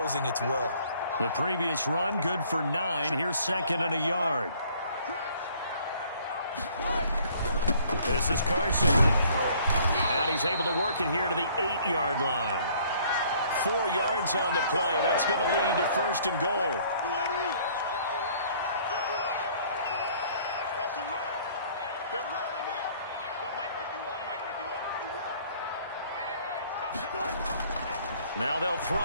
its will. The previous run, good for 9. Here's 2nd and a yard. This is Carson. And he's able to work it here to the 8-yard line. 4 yards on the play. That's going to lead to 1st and goal. Now they'll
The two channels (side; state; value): both; inverted; correlation -0.58